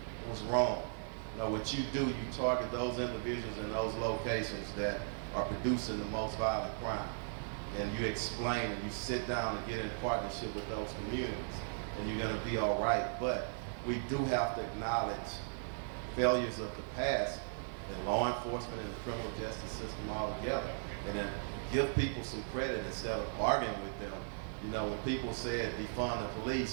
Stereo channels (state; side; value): silent; left; 53 dB below the other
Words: it was wrong. What you do, you target those individuals in those locations that are producing the most violent crime. And you explain and you sit down and get in partnership with those communities, and you're going to be all right. But we do have to acknowledge failures of the past in law enforcement and the criminal justice system altogether, and then give people some credit instead of arguing with them. When people said defund the